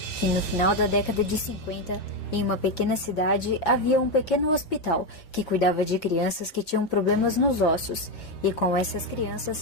que no final da década de 50, em uma pequena cidade, havia um pequeno hospital que cuidava de crianças que tinham problemas nos ossos, e com essas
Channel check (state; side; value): late; right; 6.3 ms